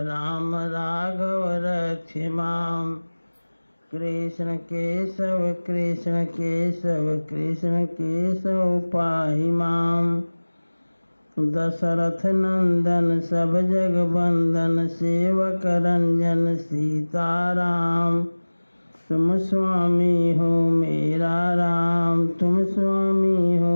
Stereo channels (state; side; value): inverted; both; correlation -1.00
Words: राम राघव रक्ष माम कृष्ण केशव कृष्ण केशव कृष्ण केशव पाहि माम दशरथ नंदन सब जग बंदन सेवक रंजन सीताराम तुम स्वामी हो मेरा राम तुम स्वामी हो